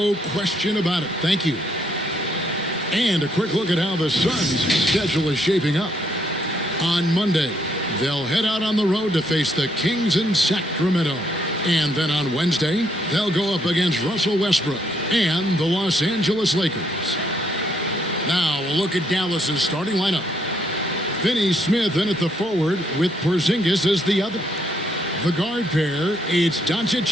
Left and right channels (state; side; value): normal; both; correlation 0.71